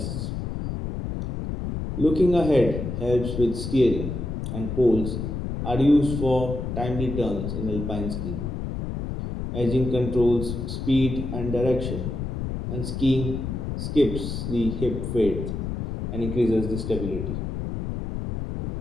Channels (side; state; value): left; noise; rumble, 4 dB below the sound